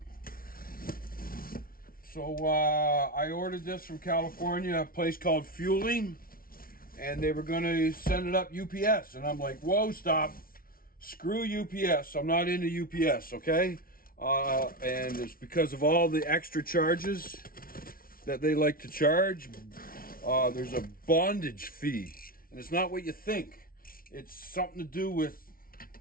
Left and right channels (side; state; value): right; late; 0.43 ms